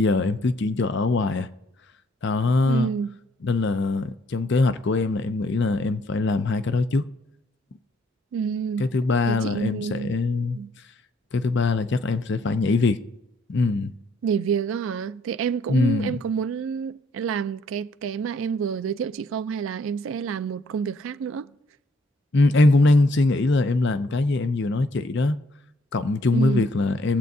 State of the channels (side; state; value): both; normal; correlation 0.66